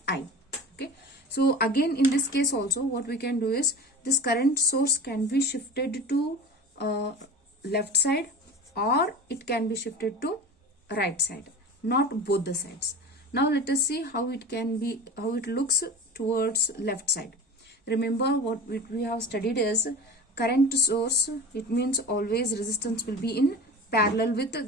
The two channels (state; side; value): normal; both; correlation 0.34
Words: I. Okay, so again in this case also what we can do is, this current source can be shifted to left side, or it can be shifted to right side, not both the sides. Now let us see how it can be, how it looks towards left side. Remember what we have studied is, current source, it means always resistance will be in parallel with